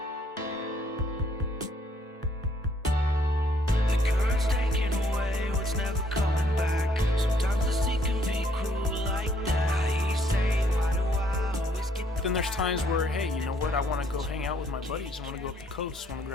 Then there's times where, hey, you know what? I want to go hang out with my buddies. I want to go up the coast. Want to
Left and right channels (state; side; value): normal; both; correlation 0.67